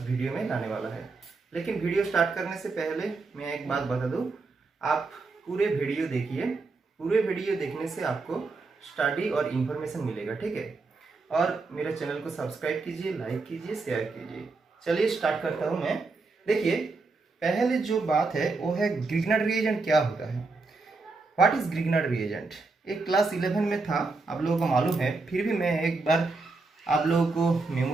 वीडियो में लाने वाला है। लेकिन वीडियो स्टार्ट करने से पहले मैं एक बात बता दूं, आप पूरे वीडियो देखिए। पूरे वीडियो देखने से आपको स्टडी और इन्फॉर्मेशन मिलेगा। ठीक है। और मेरे चैनल को सब्सक्राइब कीजिए, लाइक कीजिए, शेयर कीजिए। चलिए स्टार्ट करता हूं मैं। देखिए, पहले जो बात है वो है ग्रिग्नार्ड रिएजेंट क्या होता है। What is Grignard reagent. एक क्लास 11 में था, आप लोगों को मालूम है, फिर भी मैं एक बार आप लोगों को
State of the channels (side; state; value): left; quieter; 3.8 dB